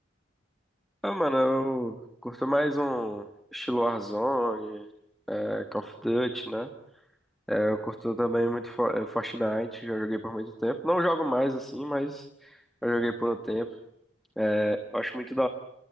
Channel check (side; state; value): both; normal; correlation 0.93